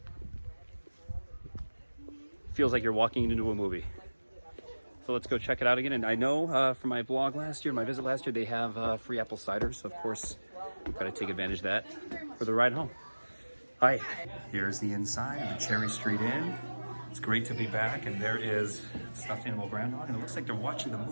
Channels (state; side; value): inverted; both; correlation -1.00